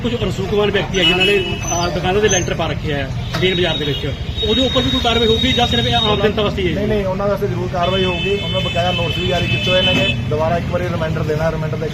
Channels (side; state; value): both; identical; correlation 1.00